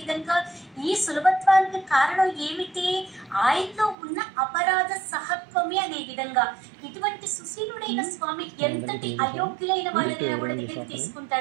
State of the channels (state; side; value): drops out; left; at 4.0 s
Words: విధంగా, ఈ సులభత్వానికి కారణం ఏమిటి? ఆయనలో ఉన్న అపరాధ సహత్వమే అనే విధంగా, ఇటువంటి సుశీలుడైన స్వామి ఎంతటి అయోగ్యులైన వాళ్ళని కూడా దగ్గరికి